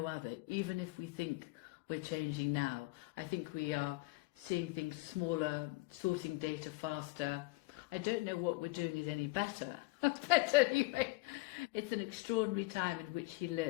other. Even if we think we're changing now, I think we are seeing things smaller, sorting data faster. I don't know what we're doing is any better. But anyway, it's an extraordinary time in which he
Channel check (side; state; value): right; quieter; 22.6 dB